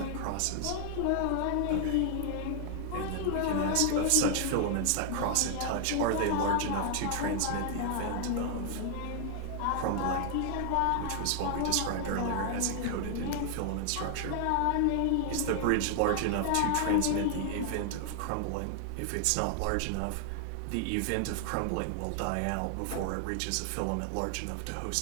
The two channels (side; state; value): both; different; correlation 0.00